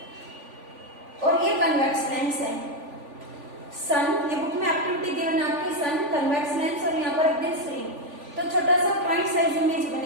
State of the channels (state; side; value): late; left; 3.5 ms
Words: और ये कन्वेक्स लेंस है, सन, ये बुक में एक्टिविटी गिवन आपके, सन, कन्वेक्स लेंस, और यहाँ पर एक स्क्रीन, तो छोटा सा पॉइंट साइज इमेज